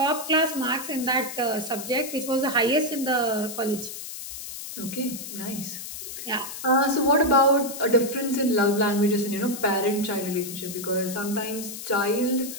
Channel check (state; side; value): noise; left; hiss, 9 dB below the sound